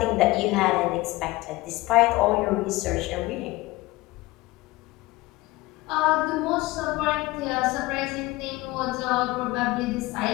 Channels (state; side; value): quieter; right; 20.3 dB